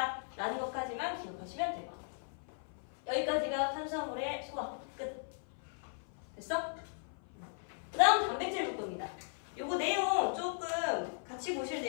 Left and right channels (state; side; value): silent; right; 53 dB below the other